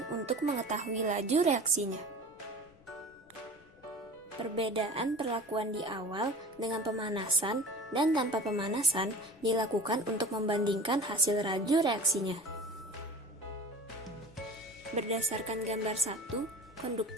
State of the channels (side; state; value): left; noise; rumble, 29 dB below the sound